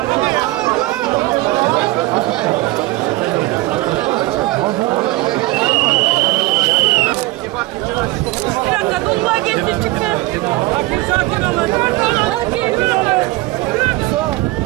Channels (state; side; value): quieter; left; 20.1 dB